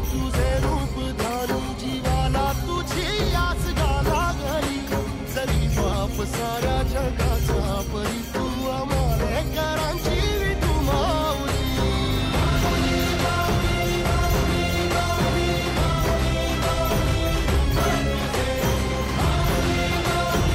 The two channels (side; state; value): both; identical; correlation 1.00